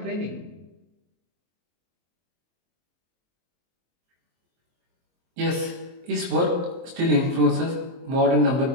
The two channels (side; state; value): left; late; 23 ms